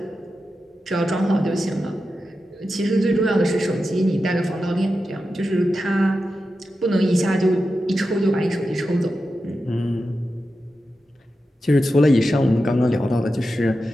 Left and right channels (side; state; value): both; normal; correlation 0.90